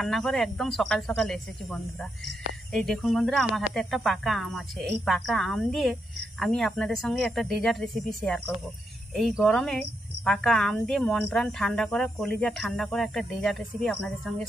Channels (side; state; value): both; normal; correlation 0.82